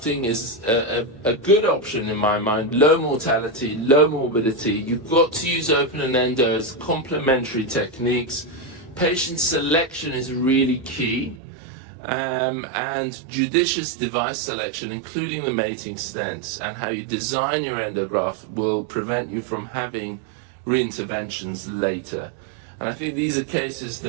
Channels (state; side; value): drops out; left; at 11.4 s